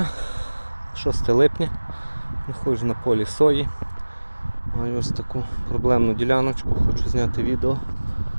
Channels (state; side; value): inverted; both; correlation -1.00